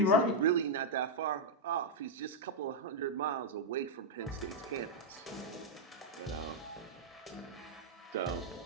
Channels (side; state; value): both; normal; correlation -0.03